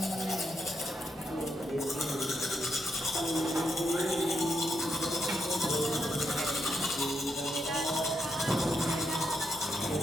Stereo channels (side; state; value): both; normal; correlation 0.80